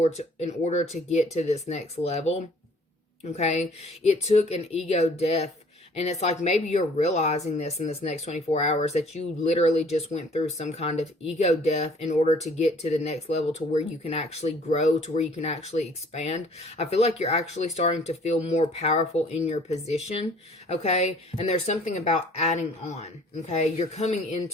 in order to get to this next level, okay? It took an ego death. And it's like maybe you're realizing this in this next 24 hours, that you literally just went through some kind of ego death in order to get to the next level, to where you can actually grow, to where you can actually expand. I feel like you're actually starting to feel more powerful in your position, okay? And there's something about adding on, okay? You're coming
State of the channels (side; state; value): both; normal; correlation 0.55